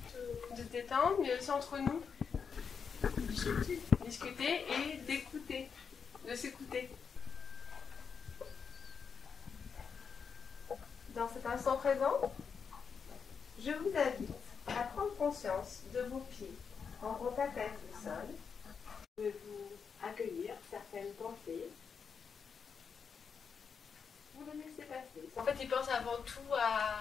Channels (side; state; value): right; quieter; 6.3 dB